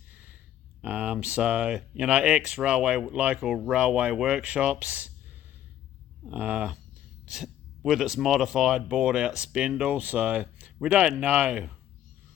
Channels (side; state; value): right; quieter; 11.6 dB